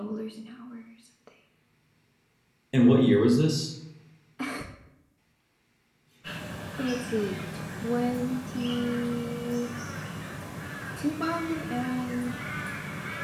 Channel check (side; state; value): both; identical; correlation 1.00